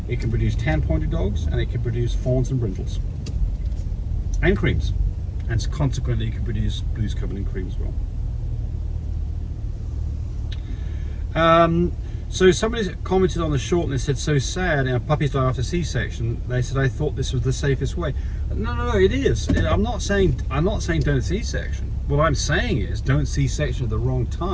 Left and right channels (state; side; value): identical; both; correlation 1.00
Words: It can produce tan-pointed dogs, and it can produce fawns and brindles and creams. And consequently, it can produce blues covered in cream as well. So somebody commented on the short and they said, so sad, puppies die after C-section. They said, I thought this was the safest way. No, it is. I'm not saying don't C-section. What I'm saying is don't C-section at the wrong